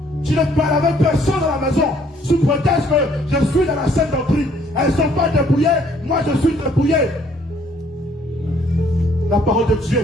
Tu ne parles avec personne à la maison. Sous prétexte que je suis dans la scène doctrine. Elles ne sont pas dépouillées, moi je suis dépouillé. La parole de Dieu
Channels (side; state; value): both; normal; correlation 0.63